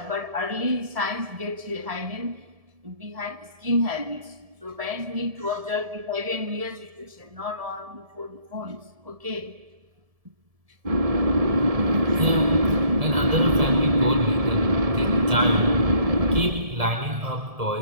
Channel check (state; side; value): late; left; 1.7 ms